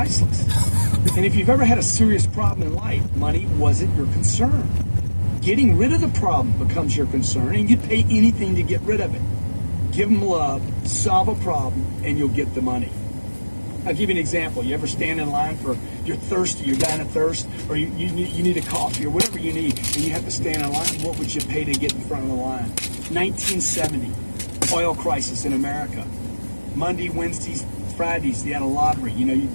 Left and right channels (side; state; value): both; inverted; correlation -1.00